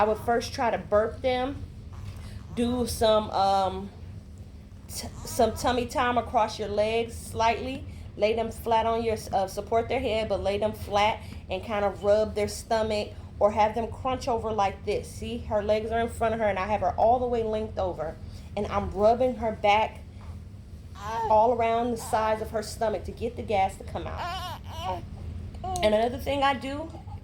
would first try to burp them, do some tummy time across your legs slightly. Lay them flat on your, support their head, but lay them flat and kind of rub their stomach, or have them crunch over like this. See, her legs are in front of her and I have her all the way linked over. And I'm rubbing her back all around the sides of her stomach to get the gas to come out. And another thing I do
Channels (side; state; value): both; identical; correlation 1.00